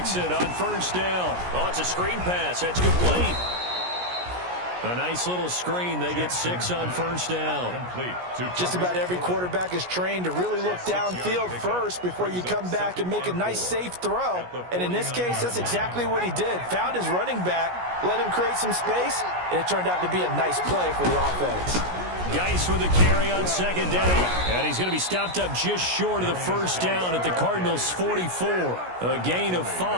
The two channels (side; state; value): left; late; 17 ms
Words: on first down. Oh, it's a screen pass. That's complete. A nice little screen. They get 6 on first down. Just about every quarterback is trained to really look downfield first before you come back and make a nice, safe throw. And in this case, that's exactly what he did. Found his running back, let him create some space, and it turned out to be a nice play for the offense. Geis with a carry on second down. And he's going to be stopped up just short of the first down at the Cardinals' 44. A gain of